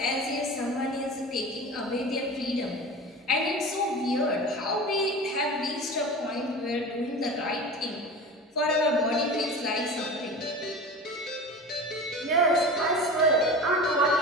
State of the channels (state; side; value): normal; both; correlation 0.33